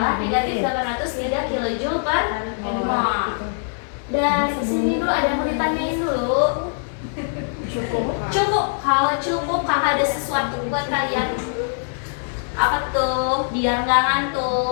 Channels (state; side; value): silent; right; digital silence